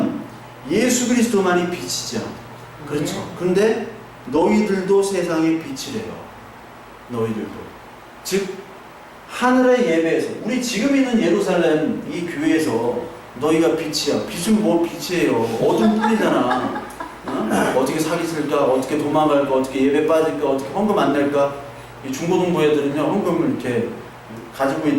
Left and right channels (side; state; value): both; identical; correlation 1.00